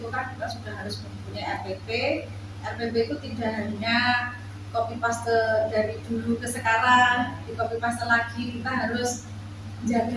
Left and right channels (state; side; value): identical; both; correlation 1.00